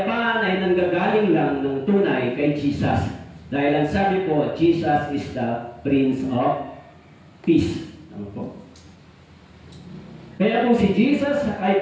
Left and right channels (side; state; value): both; identical; correlation 1.00